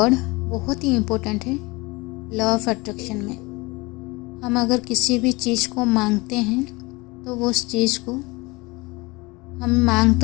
बहुत ही इम्पोर्टेंट है लॉ ऑफ अट्रैक्शन में। हम अगर किसी भी चीज़ को मांगते हैं तो वो उस चीज़ को हम मांग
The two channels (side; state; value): right; quieter; 24.1 dB